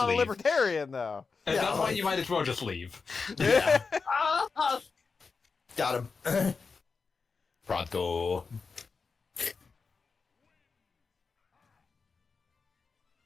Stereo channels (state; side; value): quieter; right; 4.8 dB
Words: a leave. libertarian, though. At Yeah, that point like- you might as well just leave. Yeah. Ah! Got him. Pronto.